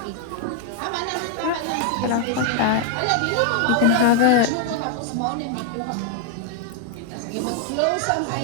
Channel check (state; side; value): different; both; correlation 0.00